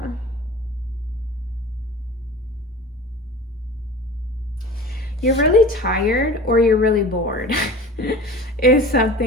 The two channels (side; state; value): both; normal; correlation 0.38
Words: You're really tired or you're really bored is